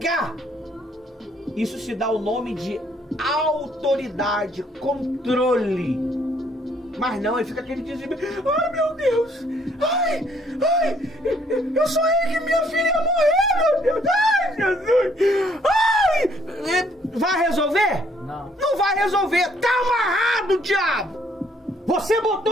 Isso se dá o nome de autoridade. Controle. Mas não, aí fica aquele desespero. Ai, meu Deus! Ai! Eu sonhei que minha filha ia morrer, meu Deus! Ai, Jesus! Ai! Vai resolver? Não. Não vai resolver! Tá amarrado, diabo! Você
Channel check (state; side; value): normal; both; correlation 0.65